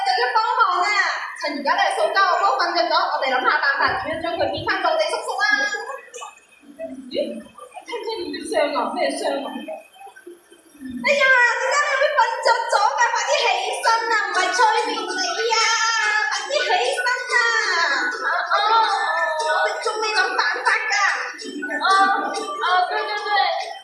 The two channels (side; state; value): both; identical; correlation 1.00